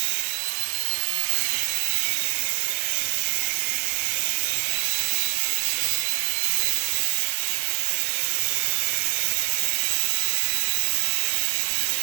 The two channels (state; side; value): silent; left; 58 dB below the other